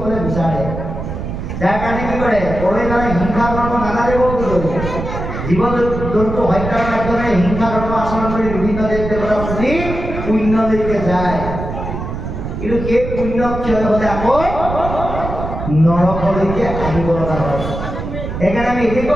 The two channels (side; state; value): right; noise; rumble, 6 dB below the sound